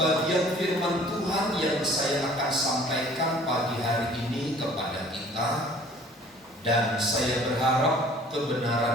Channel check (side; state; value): both; normal; correlation 0.52